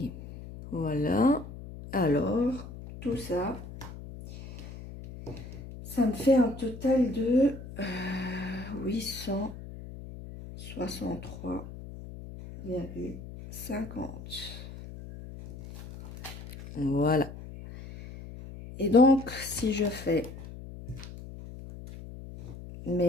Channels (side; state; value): left; noise; hum, 13 dB below the sound